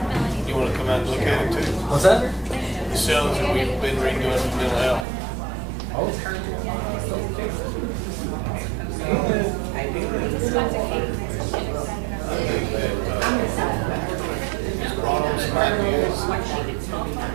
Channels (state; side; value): drops out; left; at 5.1 s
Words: You wanna come out and look at it too? What's that? The cells that we've been redoing for mental health. I think that, brought on some ideas